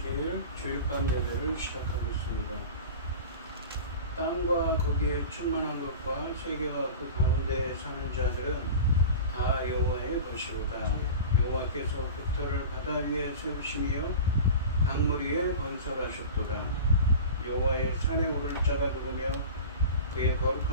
주일밤 예배를 시작하겠습니다. 땅과 거기에 충만한 것과 세계와 그 가운데 사는 자들은 다 여호와의 것이로다. 여호와께서 깃털을 바다 위에 세우시며 강물 위에 건설하셨도다. 여호와의 산에 오를 자가 누구며 그의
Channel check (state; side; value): inverted; both; correlation -0.33